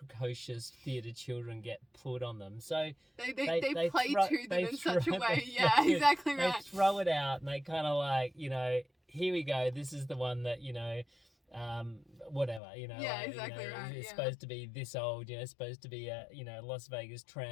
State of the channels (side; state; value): right; drops out; at 12.6 s